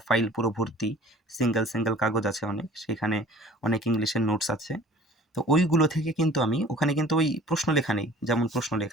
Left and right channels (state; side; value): normal; both; correlation 0.47